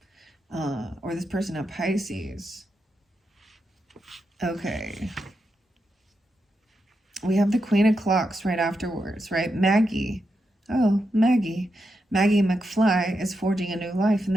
or this person at Pisces. Okay. We have the Queen of Clocks right afterwards, right? Maggie. Oh, Maggie. Maggie McFly is forging a new life in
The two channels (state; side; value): normal; both; correlation 0.85